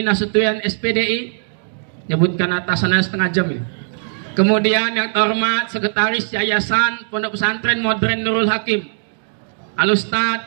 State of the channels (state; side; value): silent; left; digital silence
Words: Nasution SPDI. Nyebutkan atasannya setengah jam ya. Kemudian yang terhormat Sekretaris Yayasan Pondok Pesantren Modern Nurul Hakim,